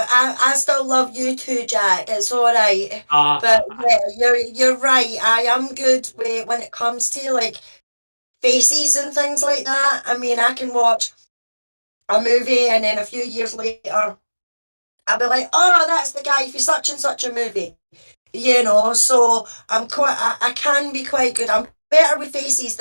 I still love you too, Jack. It's all right. But yeah, you're right. I am good when it comes to like faces and things like that. I mean, I can watch a movie and then a few years later, I'll be like, oh, that's the guy for such and such a movie. So I can be quite good. I'm better with faces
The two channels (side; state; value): both; inverted; correlation -1.00